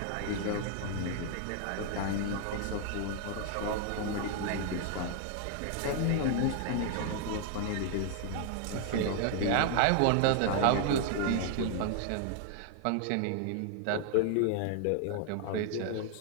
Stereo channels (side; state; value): both; different; correlation 0.00